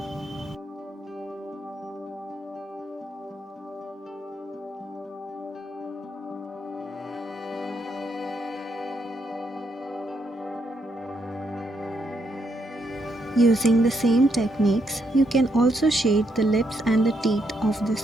Using the same techniques, you can also shade the lips and the teeth of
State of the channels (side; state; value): both; normal; correlation 0.77